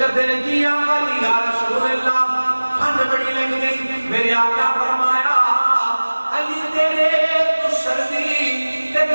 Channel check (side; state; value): both; inverted; correlation -1.00